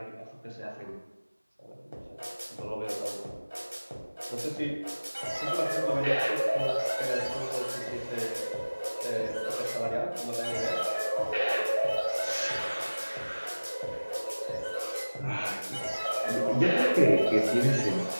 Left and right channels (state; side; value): inverted; both; correlation -1.00